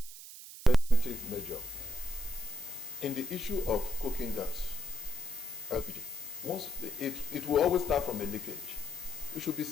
measure. In the issue of cooking gas, LPG, once it will always start from a leakage. We should be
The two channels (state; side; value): noise; right; hiss, 13 dB below the sound